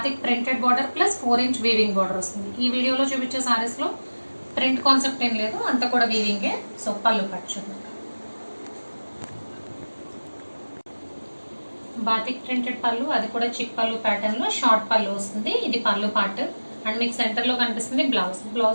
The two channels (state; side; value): inverted; both; correlation -1.00